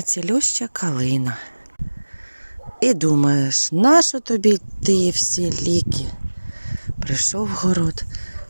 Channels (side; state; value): both; inverted; correlation -1.00